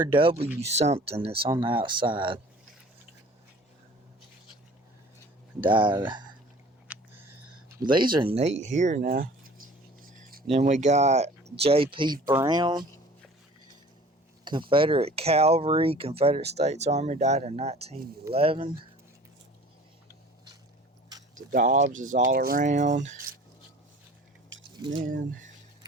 something that's on the outside. Died. These are neat here now. Then we got J.P. Brown, Confederate Cavalry, Confederate States Army, died in 1911. The Dobbs is all around. And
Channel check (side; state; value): both; normal; correlation 0.47